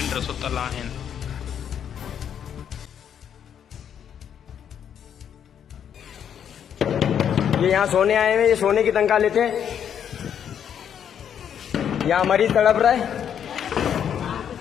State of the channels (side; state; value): right; quieter; 8.7 dB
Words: सुतल आहिनि। ये यहाँ सोने आए हैं, ये सोने की तनख्वाह लेते हैं। यहाँ मरीज तड़प रहा है।